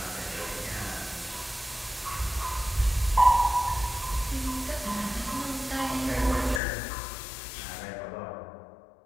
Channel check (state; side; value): drops out; right; at 6.6 s